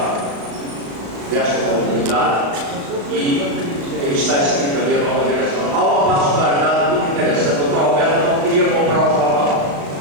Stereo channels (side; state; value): left; late; 35 ms